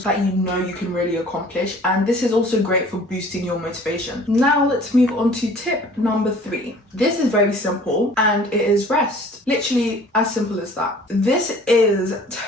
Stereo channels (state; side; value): normal; both; correlation 0.50